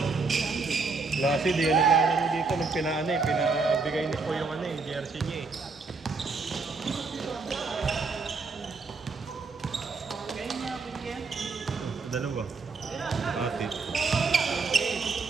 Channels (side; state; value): left; quieter; 4.3 dB